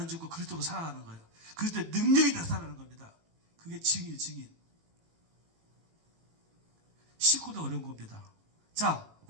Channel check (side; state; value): left; late; 18 ms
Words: 죽고 그리스도로 살아가는 거예요. 그리스도의 능력이 나타나는 겁니다. 그게 증인, 증인. 식구도 어려운 겁니다. 자,